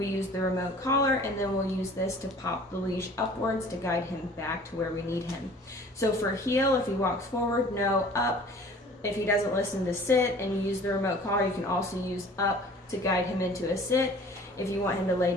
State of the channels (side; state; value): both; normal; correlation 0.48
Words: use the remote collar, and then we'll use this to pop the leash upwards to guide him back to where we need him. So for heel, if he walks forward, no, up. If he doesn't listen to sit and you use the remote collar, you can also use up to guide him into a sit. If you want him to lay